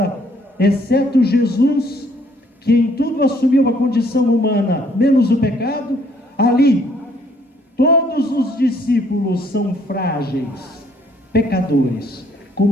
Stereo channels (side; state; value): both; normal; correlation 0.64